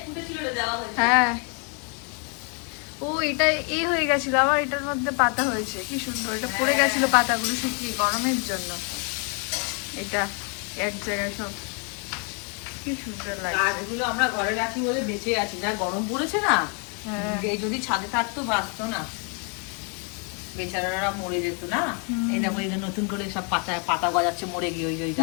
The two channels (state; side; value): quieter; right; 37.1 dB